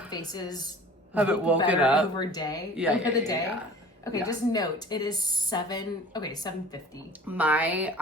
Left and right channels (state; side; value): normal; both; correlation 0.44